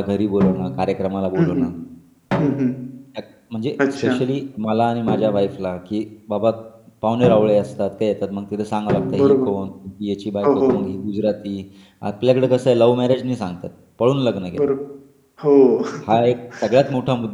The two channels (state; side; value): identical; both; correlation 1.00